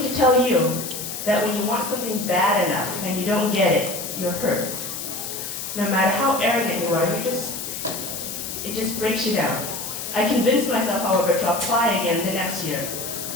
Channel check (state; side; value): noise; left; hiss, 6 dB below the sound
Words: to tell you that when you want something bad enough and you don't get it, you're hurt. No matter how arrogant you are, it just breaks you down. I convinced myself, however, to apply again the next year.